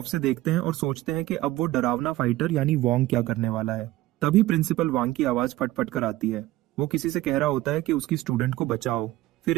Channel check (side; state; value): left; quieter; 16.6 dB